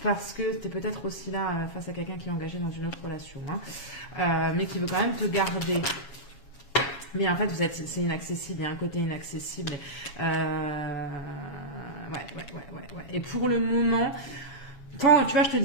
Parce que tu es peut-être aussi là face à quelqu'un qui est engagé dans une autre relation, hein, mais qui veut quand même te garder. Mais en fait, c'est inaccessible, il y a un côté inaccessible. Ouais. Et pour le moment, quand, tu vois, je te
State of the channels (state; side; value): late; right; 7.3 ms